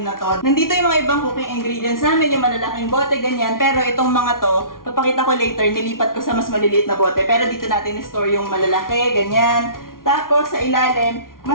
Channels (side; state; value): right; late; 0.91 ms